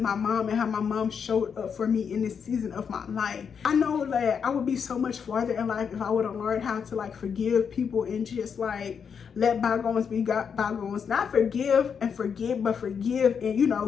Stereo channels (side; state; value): right; quieter; 6.8 dB